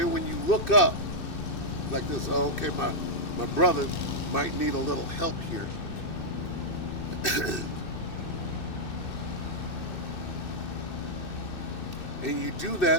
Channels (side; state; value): right; late; 2.6 ms